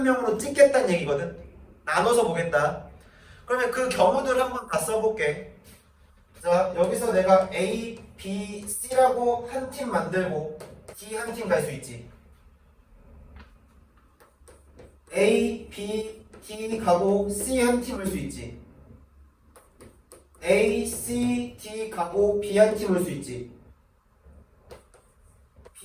찍겠다는 얘기거든. 나눠서 보겠다. 그러면 그 경우들을 한번 다 써볼게. 자, 여기서 내가 A, B, C라고 한 팀 만들고 D 한 팀 갈 수 있지. A, B, D 가고 C 한 팀 올 수 있지. A, C, D 가고 B 한 팀 올 수 있지.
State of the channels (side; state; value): both; identical; correlation 1.00